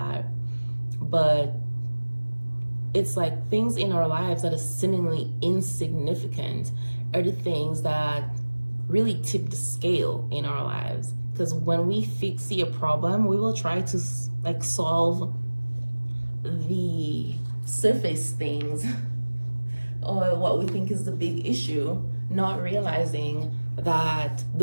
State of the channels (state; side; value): inverted; both; correlation -1.00